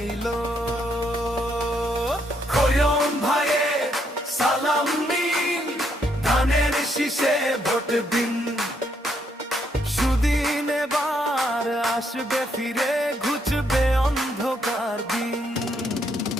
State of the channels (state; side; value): normal; both; correlation 0.74